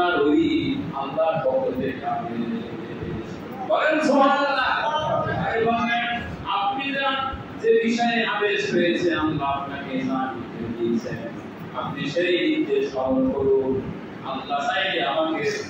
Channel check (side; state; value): both; identical; correlation 1.00